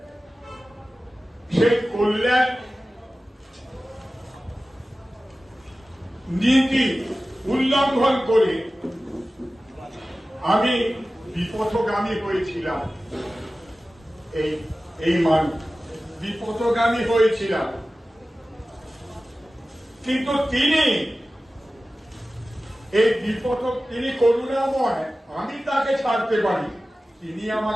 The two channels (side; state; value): both; normal; correlation 0.96